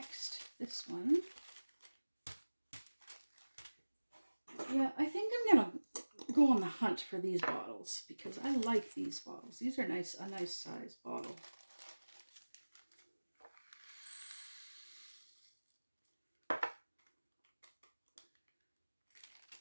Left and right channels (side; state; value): both; inverted; correlation -1.00